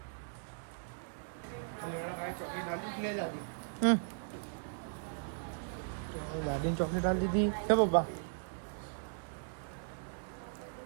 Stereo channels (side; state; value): left; silent; digital silence